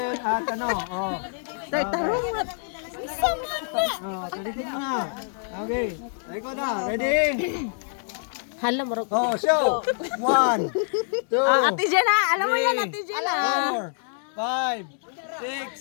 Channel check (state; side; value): silent; right; digital silence